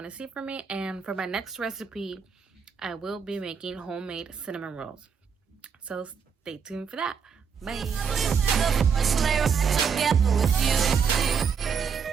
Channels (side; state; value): left; quieter; 6.5 dB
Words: to see from me. And for my next recipe, I will be making homemade cinnamon rolls. So stay tuned for that. Bye.